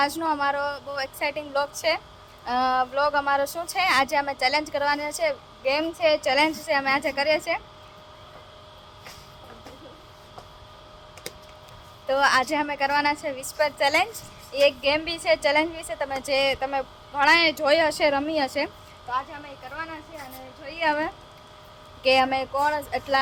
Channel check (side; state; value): both; identical; correlation 1.00